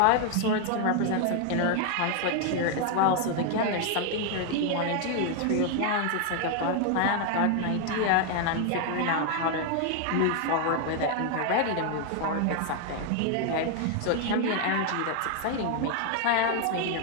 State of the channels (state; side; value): different; both; correlation 0.00